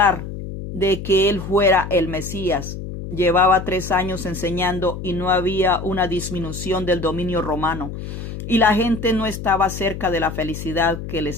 de que él fuera el Mesías. Llevaba 3 años enseñando y no había una disminución del dominio romano, y la gente no estaba cerca de la felicidad que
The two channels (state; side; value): noise; left; hum, 8 dB below the sound